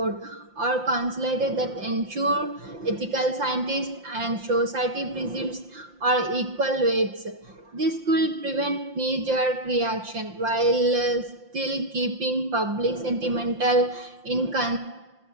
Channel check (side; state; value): left; late; 5.7 ms